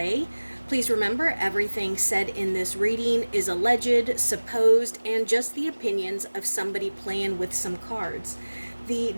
Please remember, everything said in this reading is alleged, supposed, and just the opinions of somebody playing with some cards. The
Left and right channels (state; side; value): inverted; both; correlation -1.00